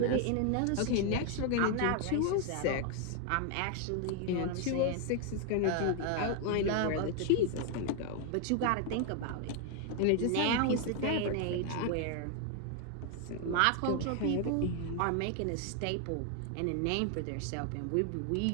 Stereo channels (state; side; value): different; both; correlation 0.00